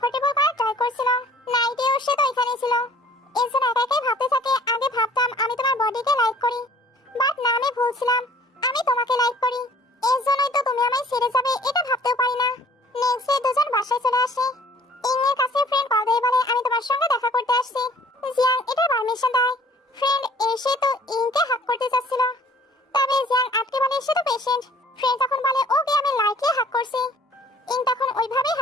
করার ট্রাই করছিল। নাইটেও সে তো এখানেই ছিল। এর জন্য একা একাই ভাবতে থাকে, আগে ভাবতাম আমি তোমার বডিকে লাইক করি, বাট না, আমি ভুলছিলাম, আমি তোমাকে লাইক করি, এর জন্যই তো তুমি আমায় ছেড়ে যাবে এটা ভাবতেও পারি না। নেক্সট ডে দুজন বাসায় চলে আসে। ইং এর কাছে ফ্রেন্ড কল দিয়ে বলে আমি তোমার সঙ্গে দেখা করতে আসছি। জিয়াং এটা পারমিশন দেয়। ফ্রেন্ড এসে তো ইংকে হাক করতে যাচ্ছিল, তবে জিয়াং আটকে বলে সে তো পেশেন্ট। ফ্রেন্ড তখন বলে ওকে আমি লাইটলি হাক করছি। ইং তখন ওইভাবেই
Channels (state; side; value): normal; both; correlation 0.53